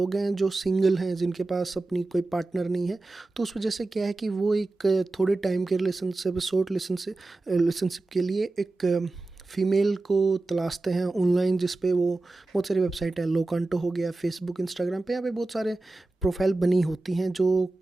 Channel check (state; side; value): quieter; left; 3.1 dB